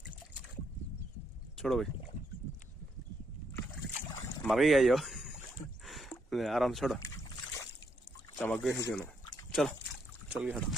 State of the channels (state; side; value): normal; both; correlation 0.76